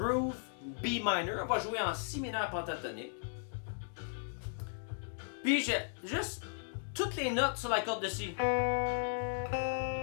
B minor. On va jouer en Si mineur pentatonique. Puis juste toutes les notes sur la corde de Si.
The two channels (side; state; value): right; silent; digital silence